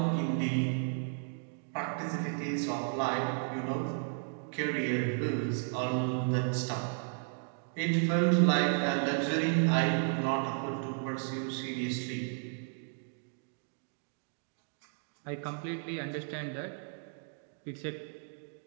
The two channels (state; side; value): silent; left; 55 dB below the other